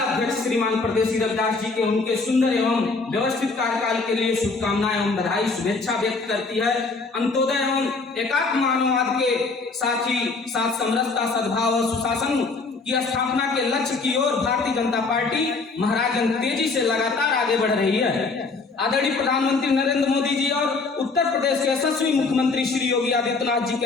अध्यक्ष श्रीमान परदेसी रविदास जी के उनके सुंदर एवं व्यवस्थित कार्यकाल के लिए शुभकामनाएं एवं बधाई शुभेच्छा व्यक्त करती है। अंत्योदय एवं एकात्म मानववाद के साथ ही साथ समरसता, सद्भाव और सुशासन की स्थापना के लक्ष्य की ओर भारतीय जनता पार्टी महाराजगंज तेजी से लगातार आगे बढ़ रही है। आदरणीय प्रधानमंत्री नरेंद्र मोदी जी और उत्तर प्रदेश के यशस्वी मुख्यमंत्री श्री योगी आदित्यनाथ जी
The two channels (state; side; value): quieter; right; 4.0 dB